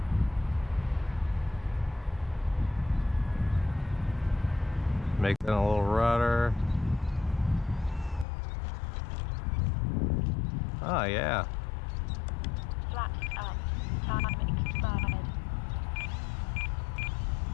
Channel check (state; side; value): drops out; right; at 8.2 s